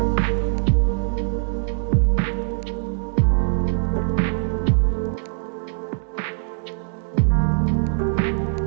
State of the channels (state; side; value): silent; left; digital silence